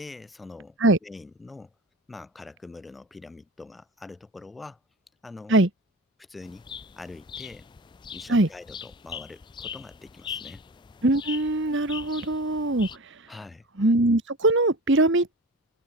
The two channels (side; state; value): both; normal; correlation 0.33